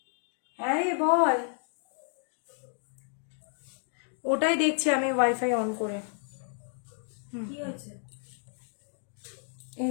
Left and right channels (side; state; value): right; silent; 57 dB below the other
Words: হ্যাঁ রে বল, ওটাই দেখছি আমি ওয়াইফাই অন করে। কি হয়েছে?